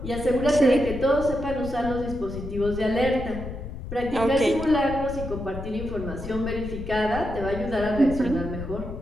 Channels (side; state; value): left; noise; rumble, 9 dB below the sound